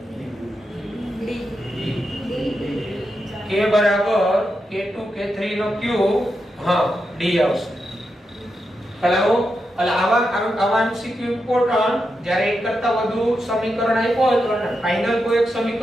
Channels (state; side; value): normal; both; correlation 0.86